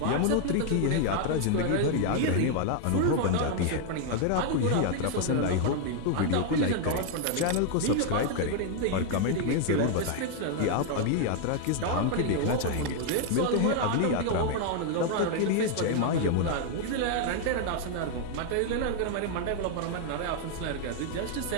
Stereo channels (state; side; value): different; both; correlation 0.00